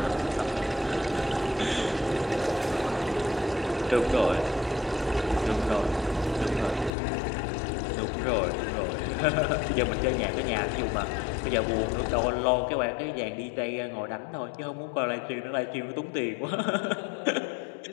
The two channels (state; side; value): drops out; right; at 6.9 s